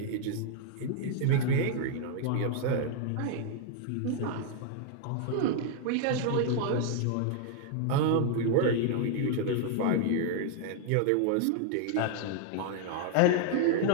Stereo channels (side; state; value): both; different; correlation 0.00